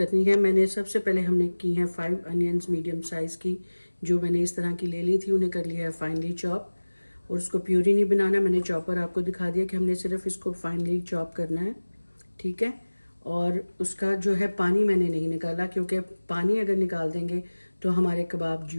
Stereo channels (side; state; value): both; inverted; correlation -1.00